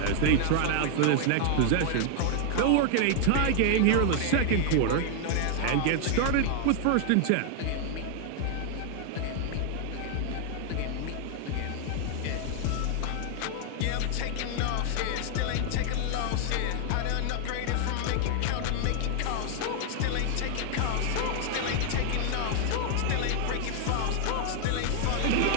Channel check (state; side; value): different; both; correlation 0.00